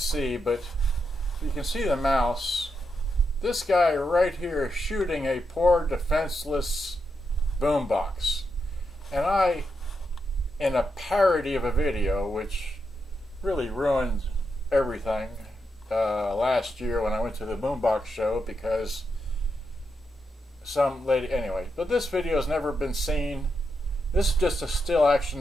but you can see the mouse. This guy right here is shooting a poor defenseless boombox. And I, in a parody of a video, which really ruined everything last year when I went to the boombox show, because some lady, anyway. But this video has never been seen. This is just a still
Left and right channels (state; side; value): normal; both; correlation 0.84